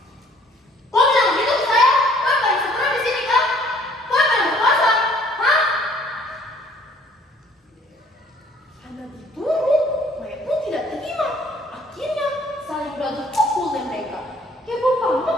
"Kok bilang gitu ke saya? Kok pada sempurna di sini kan? Kok pada berpuasa? Hah?" Karena diturut, Maya pun tidak terima. Akhirnya saling beradu pukul dan mereka. Heboh banget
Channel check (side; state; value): both; normal; correlation 0.58